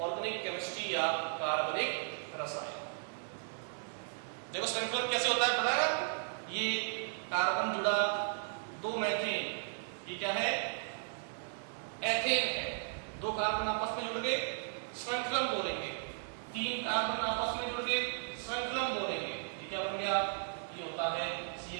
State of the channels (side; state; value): left; silent; digital silence